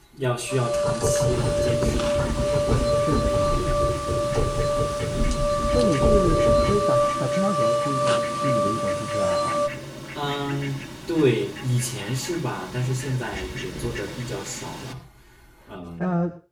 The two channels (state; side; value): identical; both; correlation 1.00